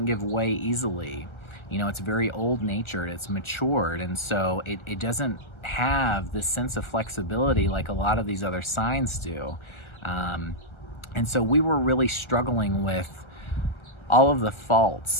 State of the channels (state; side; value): late; right; 1.3 ms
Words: give way easily. It's very old natured, it's matured, and so it doesn't have this sense of flexibility like a lot of these other signs do. And so we were really struggling with all of the